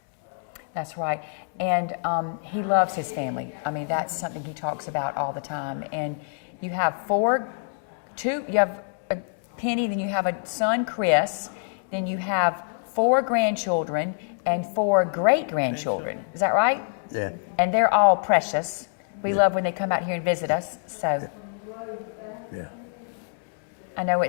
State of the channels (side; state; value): right; silent; digital silence